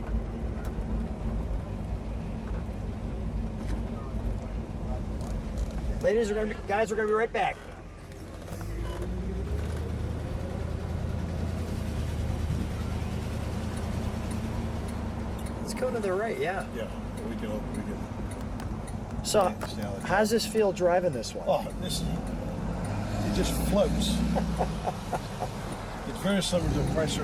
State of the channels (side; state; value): both; identical; correlation 1.00